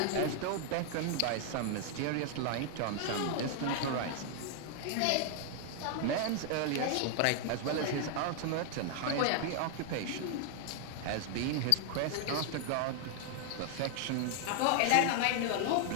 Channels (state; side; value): different; both; correlation 0.00